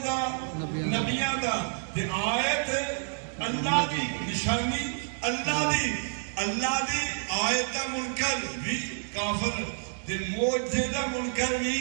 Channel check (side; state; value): left; silent; digital silence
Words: نبیاں دا تے آیت اللہ دی نشانی اللہ دی. اللہ دی آیت دا منکر بھی کافر تے معجزے دا منکر بھی